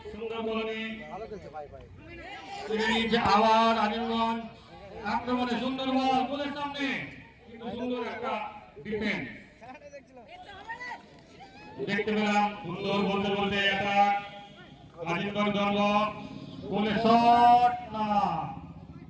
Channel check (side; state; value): both; identical; correlation 1.00